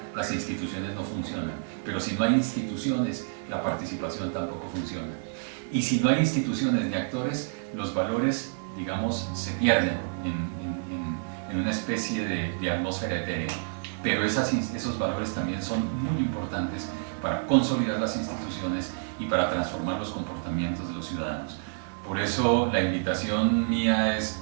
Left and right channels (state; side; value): silent; left; digital silence